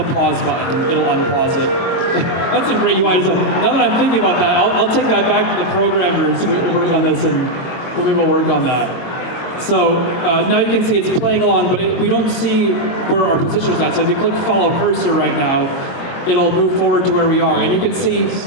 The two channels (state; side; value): late; right; 23 ms